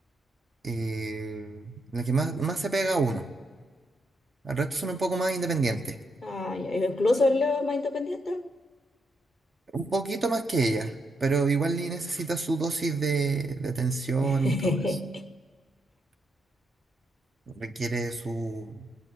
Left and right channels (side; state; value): both; normal; correlation 0.79